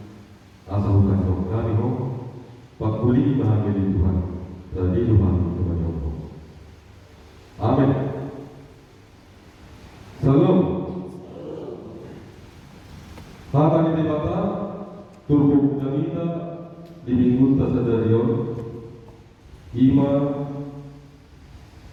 asa bukan jauh kami ho pakuli bahagia di Tuhan dari Tuhan Tuhan Allah. Amin. Salam. Hata ni dibata turbu jamita di minggu tasadarion ima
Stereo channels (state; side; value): identical; both; correlation 1.00